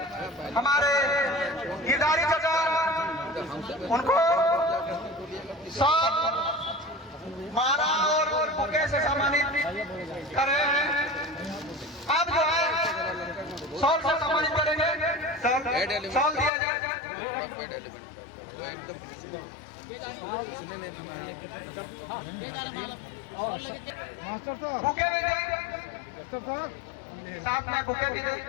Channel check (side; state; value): right; drops out; at 16.5 s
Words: हमारे गिरधारी चाचा उनको सब माला और बुके से सम्मानित कर रहे हैं। अब जो है शॉल से सम्मानित करेंगे। शॉल दिया जाए। बुके भी दें, साथ में बुके भी दें।